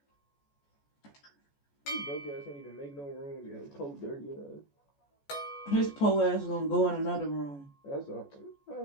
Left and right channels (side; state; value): right; late; 14 ms